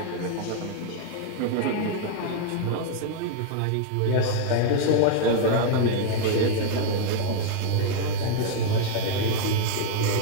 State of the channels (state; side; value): different; both; correlation 0.00